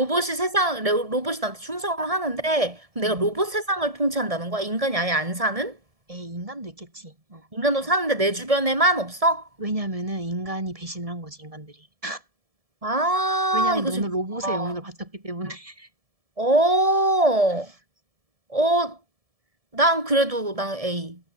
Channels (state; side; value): late; left; 1.7 ms